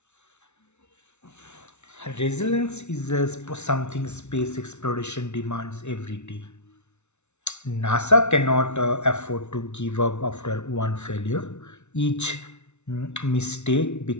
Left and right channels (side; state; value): right; late; 0.82 ms